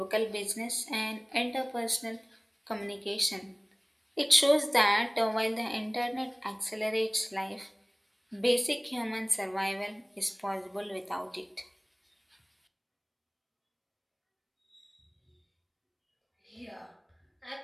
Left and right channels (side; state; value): both; identical; correlation 1.00